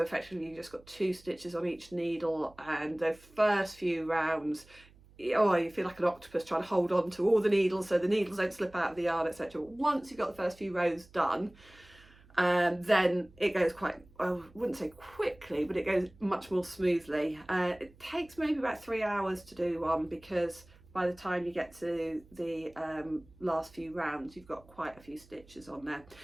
effectively you just got 2 stitches on each needle, and the first few rounds, oh, you feel like an octopus trying to hold on to all the needles so the needles don't slip out of the yarn, etc. Once you've got the first few rows done, then it goes quite, I wouldn't say quickly, but it goes much more smoothly. It takes maybe about 3 hours to do one, because by the time you get to the last few rounds, you've got quite a few stitches on there.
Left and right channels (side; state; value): right; noise; hum, 26 dB below the sound